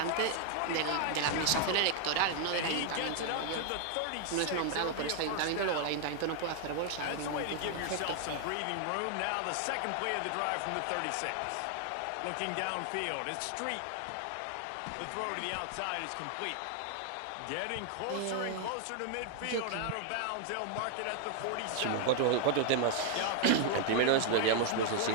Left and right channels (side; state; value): both; different; correlation 0.00